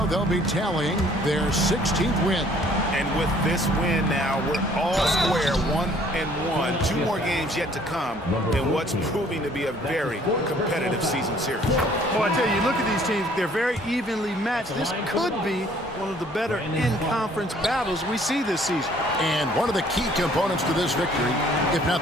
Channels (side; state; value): both; normal; correlation 0.58